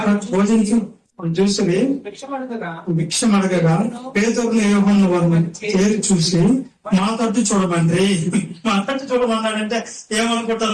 భోజించి చూసి భిక్షం అడగగా పేతురును యోహాను వారిని చేరి చూసి మా తట్టు చూడమండి, మా తట్టు చూడమన్నాడంటే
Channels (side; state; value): both; identical; correlation 1.00